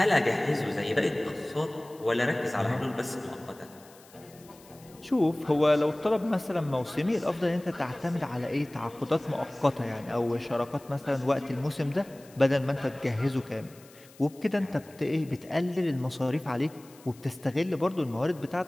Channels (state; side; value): noise; left; hiss, 24 dB below the sound